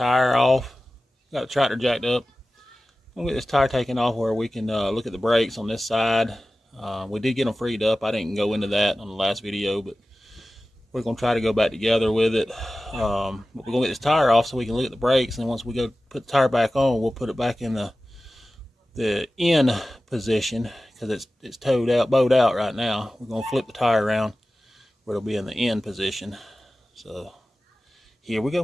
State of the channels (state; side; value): normal; both; correlation 0.95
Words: off. Got the tractor jacked up. I'm gonna get this tire taken off where we can look at the brakes on this side. We did get them freed up. I didn't go into that on the last video, but we're gonna try to go back together with it. But we're gonna get this tire off so we can look at the brakes, and once we go put the tire back on, we'll put it back in the in position because it's bowed out right now. We're gonna flip the tire around where it'll be in the in position. So here we